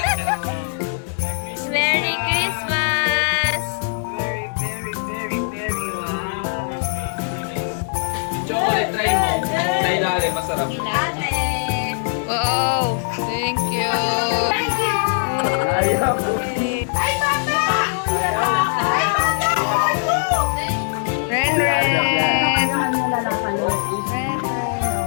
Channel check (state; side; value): silent; right; 65 dB below the other